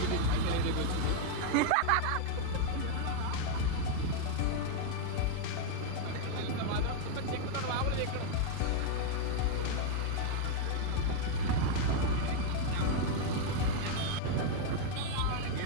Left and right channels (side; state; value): both; different; correlation 0.00